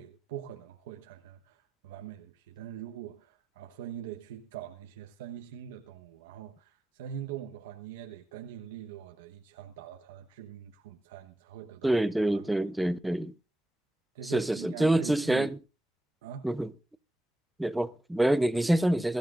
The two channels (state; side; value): normal; both; correlation 0.91